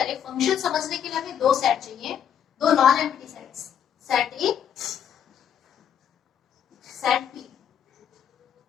फंक्शन समझने के लिए हमें दो सेट चाहिए, दो non empty sets, set a, set b.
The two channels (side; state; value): right; quieter; 9.0 dB